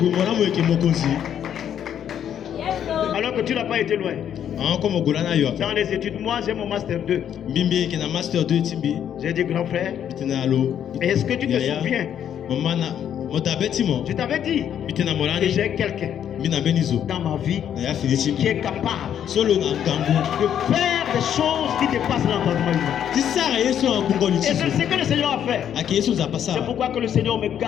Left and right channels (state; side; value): quieter; right; 9.5 dB